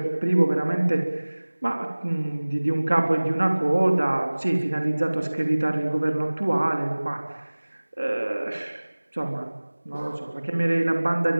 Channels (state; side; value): inverted; both; correlation -1.00